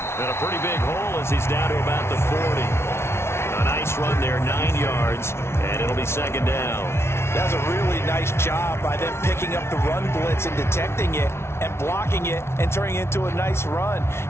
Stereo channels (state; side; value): late; right; 0.12 ms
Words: And a pretty big hole as he's down to about the 40. A nice run there, 9 yards, and it'll be 2nd down. That was a really nice job by them picking up the run blitz and detecting it and blocking it and turning it into a nice run.